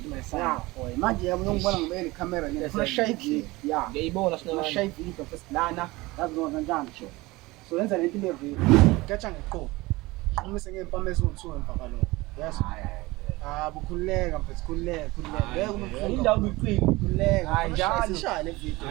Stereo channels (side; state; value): left; quieter; 21.2 dB